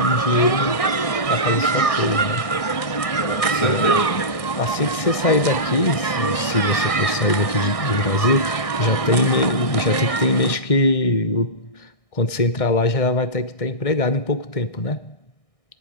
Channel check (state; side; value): late; right; 1.6 ms